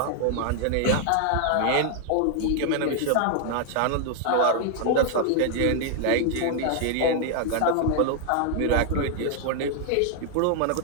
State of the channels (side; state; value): both; different; correlation 0.00